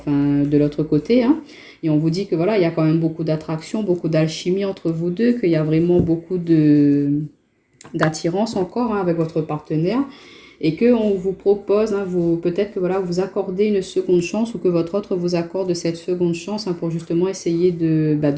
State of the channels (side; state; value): both; identical; correlation 1.00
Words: de l'autre côté. Et on vous dit que voilà, il y a quand même beaucoup d'attraction, beaucoup d'alchimie entre vous deux, qu'il y a vraiment beaucoup d'attirance encore avec votre partenaire. Et qu'on vous propose, peut-être que voilà, vous accordez une seconde chance, ou que votre autre vous accorde cette seconde chance pour justement essayer